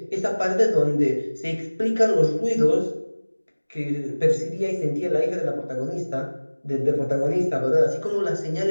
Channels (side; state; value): both; inverted; correlation -1.00